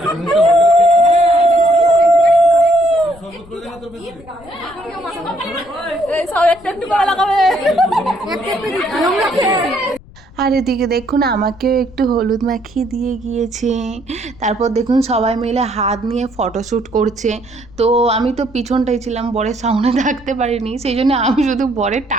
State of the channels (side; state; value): left; noise; rumble, 22 dB below the sound